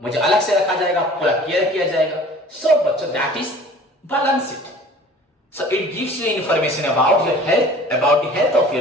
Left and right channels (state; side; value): normal; both; correlation 0.46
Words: मुझे अलग से रखा जाएगा, पूरा केयर किया जाएगा। सो बच्चों that is balance sheet. So it gives you information about your health, about the health of your